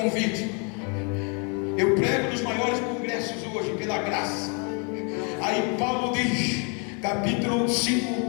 Eu prego nos maiores congressos hoje, pela graça. Aí Paulo diz, capítulo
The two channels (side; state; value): right; quieter; 36.2 dB